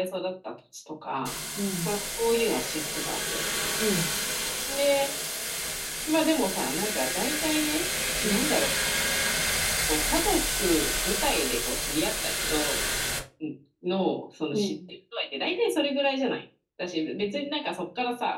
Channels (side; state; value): both; identical; correlation 1.00